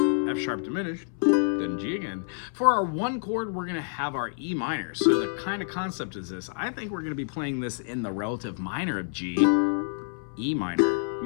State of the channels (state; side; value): silent; right; 59 dB below the other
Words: F sharp diminished, then G again. For our one chord, we're going to have our E minor. So the kind of concept is this. I think we're going to be playing this in the relative minor of G, E minor.